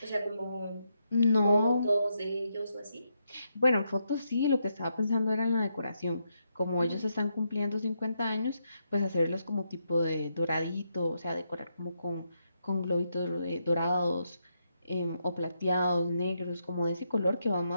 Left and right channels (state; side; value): inverted; both; correlation -0.81